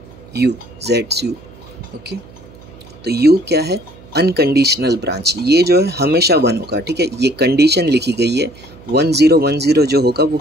U, ZSU, okay. तो U क्या है, अनकंडीशनल ब्रांच, ये जो है हमेशा 1 होगा, ठीक है। ये कंडीशन लिखी गई है, 1 0 1 0 जो होगा वो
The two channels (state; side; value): noise; right; hum, 22 dB below the sound